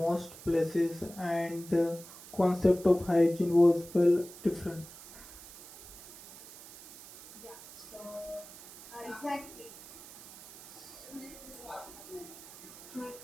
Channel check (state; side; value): noise; right; hiss, 17 dB below the sound